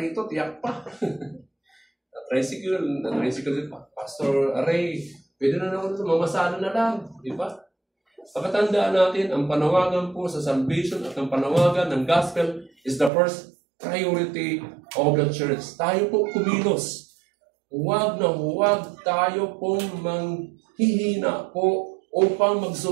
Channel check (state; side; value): drops out; left; at 13.1 s